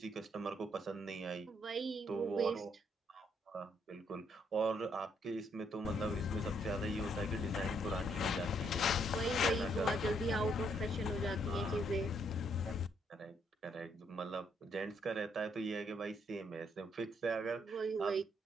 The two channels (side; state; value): both; normal; correlation 0.72